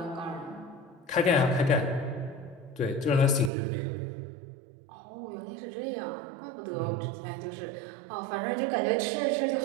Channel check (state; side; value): drops out; left; at 3.5 s